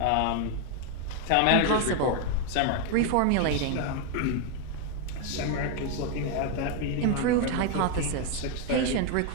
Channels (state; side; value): different; both; correlation 0.01